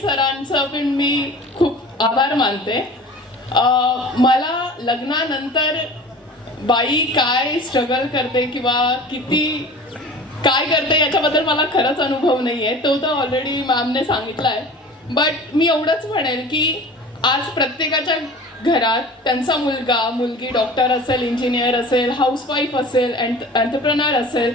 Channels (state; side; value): normal; both; correlation 0.40